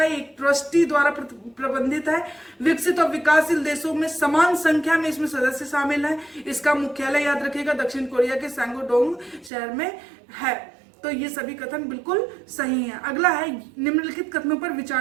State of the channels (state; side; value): drops out; left; at 9.5 s